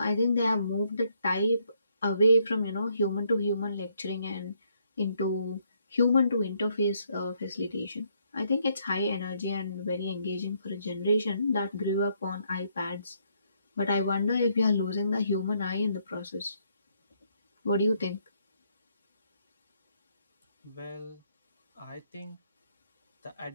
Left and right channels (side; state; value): both; inverted; correlation -0.72